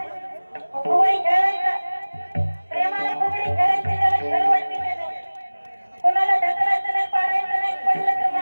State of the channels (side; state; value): both; inverted; correlation -1.00